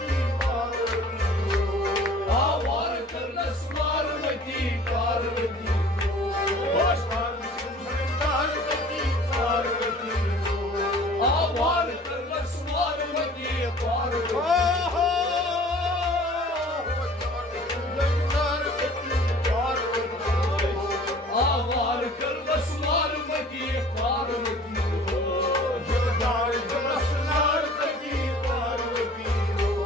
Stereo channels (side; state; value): both; normal; correlation 0.48